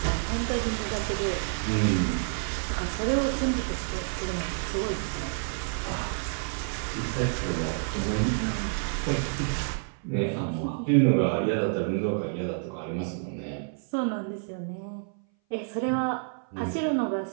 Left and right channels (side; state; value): left; silent; 57 dB below the other